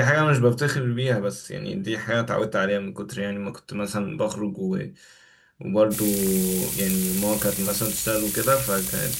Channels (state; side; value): identical; both; correlation 1.00